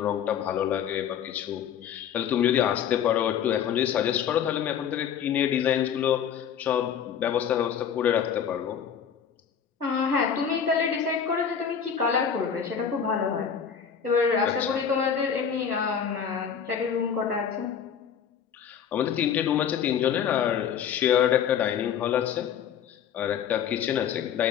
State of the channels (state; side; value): quieter; right; 8.0 dB